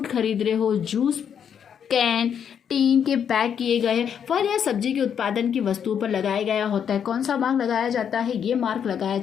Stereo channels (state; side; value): quieter; right; 8.1 dB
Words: खरीद रहे हो, जूस कैन टीन के पैक किए गए फल या सब्जी के उत्पादन की वस्तुओं पर लगाया गया होता है। कौन सा मार्क लगाया जाता है? ये मार्क लगाया